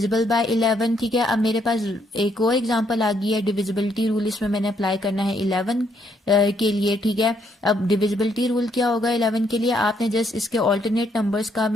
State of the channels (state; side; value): normal; both; correlation 0.72